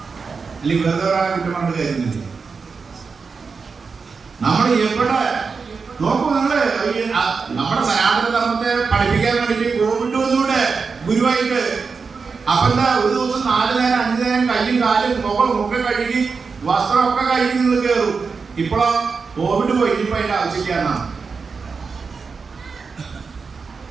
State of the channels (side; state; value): left; quieter; 5.0 dB